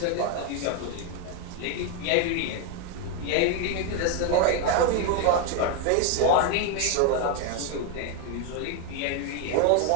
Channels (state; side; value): different; both; correlation 0.01